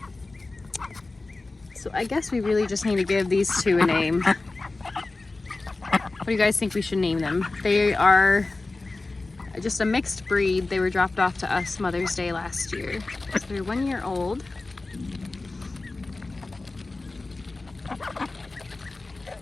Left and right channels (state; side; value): quieter; right; 3.3 dB